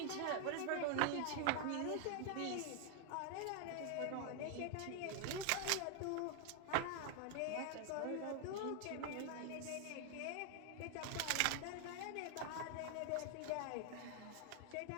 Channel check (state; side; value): different; both; correlation 0.00